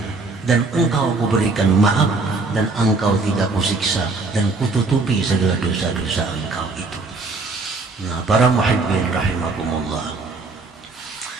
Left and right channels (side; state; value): left; quieter; 3.6 dB